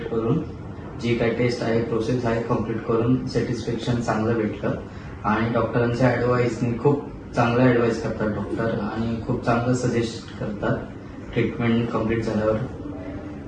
करून जी काही टेस्ट आहे प्रोसेस आहे कंप्लीट करून सॅटिस्फॅक्शन चांगलं भेटलं. आणि डॉक्टरांच्या ॲडवाईसनी खूप चांगलं ॲडवाईस करतात डॉक्टर आणि खूप चांगलं सजेस्ट करतात ट्रीटमेंट कंप्लीट झाल्यावर.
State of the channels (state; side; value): identical; both; correlation 1.00